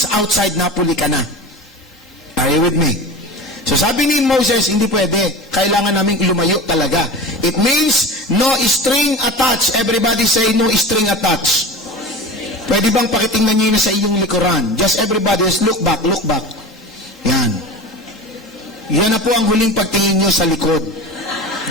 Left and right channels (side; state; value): both; normal; correlation 0.33